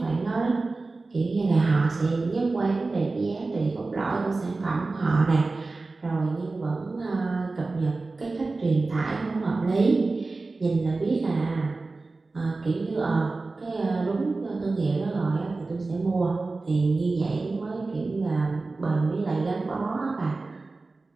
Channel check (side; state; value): left; quieter; 3.6 dB